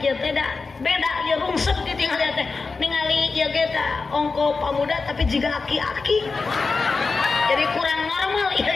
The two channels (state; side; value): quieter; right; 4.3 dB